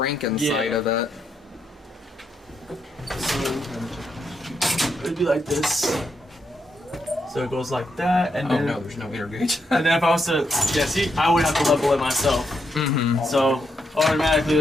inside Yeah. of it. So it'd be like this. So it goes like that, and Oh then no, there's no inner gauge. and then if I was to see, I would have to level it myself. Mm-hmm. So automatically it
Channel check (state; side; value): normal; both; correlation 0.79